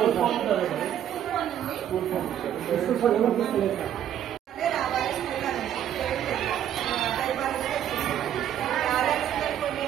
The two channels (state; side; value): quieter; left; 10.4 dB